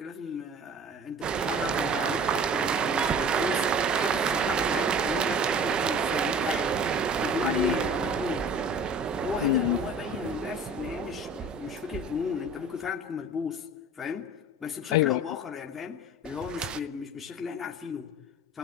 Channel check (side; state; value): both; normal; correlation 0.43